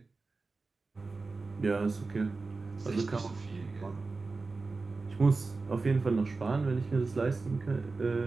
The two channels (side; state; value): left; quieter; 3.9 dB